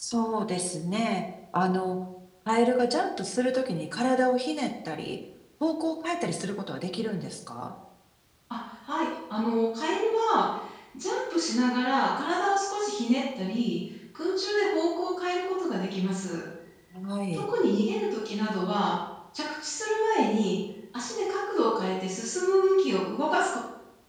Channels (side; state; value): both; identical; correlation 1.00